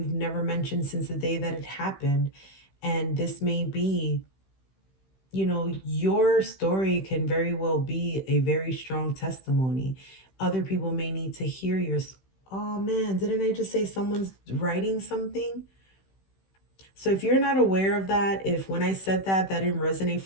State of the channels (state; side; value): late; right; 16 ms